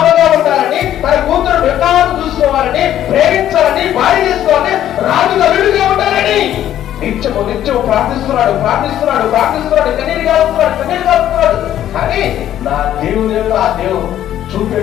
ఉండాలని, తన కూతురు వికాసం చూసుకోవాలని, ప్రేమించాలని, భార్య చేసుకోవాలని, రాజు అల్లుడిగా ఉండాలని నిత్యము ప్రార్థిస్తున్నాడు. కన్నీరు కాలుస్తున్నాడు. కానీ నా దేవుని యొక్క ఆ దేవుడు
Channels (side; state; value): right; quieter; 11.7 dB